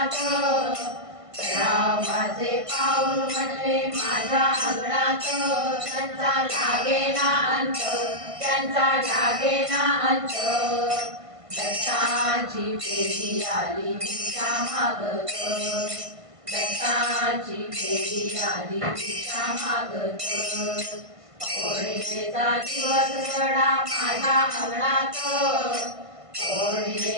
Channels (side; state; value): left; late; 1.5 ms